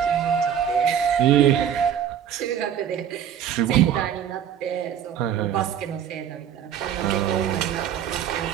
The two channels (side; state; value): left; quieter; 9.3 dB